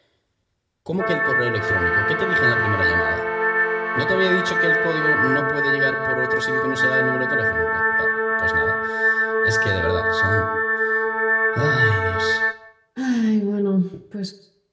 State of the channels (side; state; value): both; identical; correlation 1.00